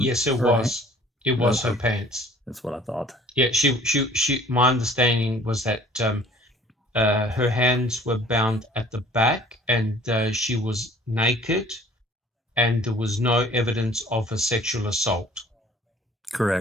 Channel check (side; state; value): both; normal; correlation 0.52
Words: yes, it was. It was her pants. That's what I thought. Yeah, she. My understanding was that her hands were bound at the back, and she was naked, and there was no evidence of a sexual assault.